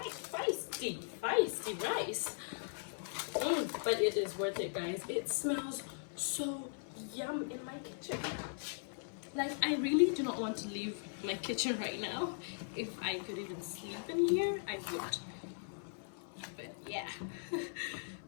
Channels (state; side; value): silent; right; 52 dB below the other